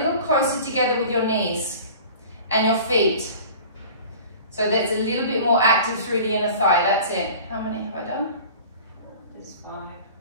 closer together with your knees and your feet. So that's a little bit more active through the inner thigh. That's it. How many have I done? There's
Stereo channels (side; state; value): both; inverted; correlation -0.42